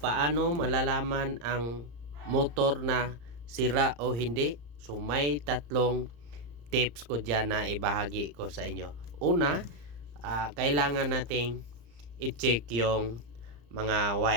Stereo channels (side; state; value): left; late; 34 ms